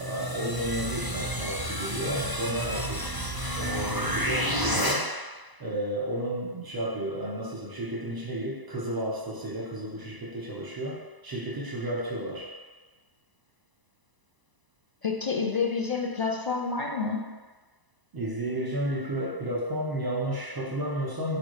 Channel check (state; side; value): late; left; 1.0 ms